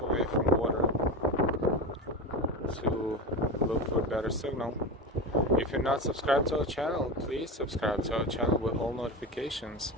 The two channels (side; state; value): both; normal; correlation 0.22